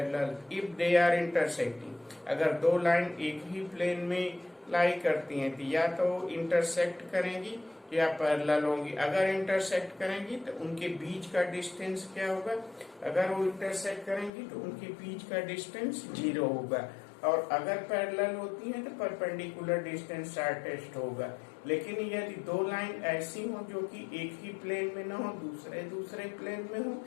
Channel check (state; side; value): drops out; right; at 14.3 s